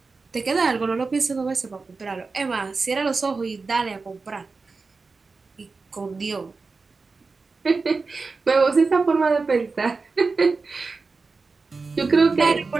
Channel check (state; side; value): quieter; left; 4.2 dB